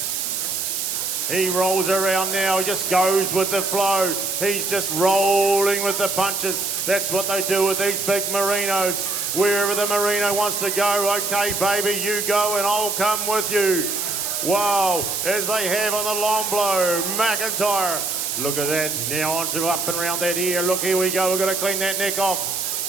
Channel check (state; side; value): noise; right; hiss, 2 dB below the sound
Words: He rolls around now. He just goes with the flow. He's just rolling with the punches. That's what they do with these big merinos. Wherever the merino wants to go, okay, baby, you go and I'll come with you. Wow, as they have on the long blow, McIntyre. Look at that, now onto up and around that ear. Look, here we go, we're going to clean that neck off.